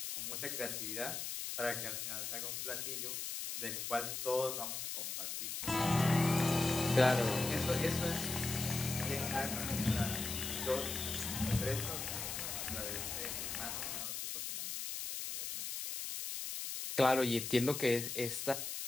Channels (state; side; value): noise; left; hiss, 4 dB below the sound